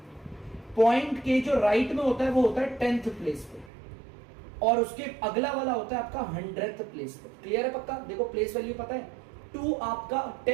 पॉइंट के जो राइट में होता है वो होता है 10th प्लेस पे, और उसके अगला वाला होता है आपका 100th प्लेस पे। क्लियर है पक्का, देखो प्लेस वैल्यू पता है, 2 आपका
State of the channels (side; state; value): left; drops out; at 3.7 s